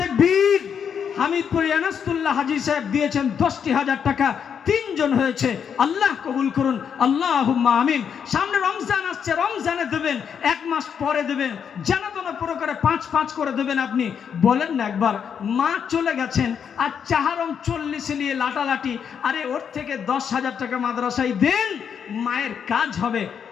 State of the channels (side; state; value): right; quieter; 7.5 dB